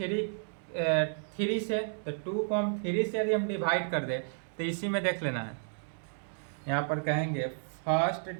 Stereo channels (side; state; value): left; silent; digital silence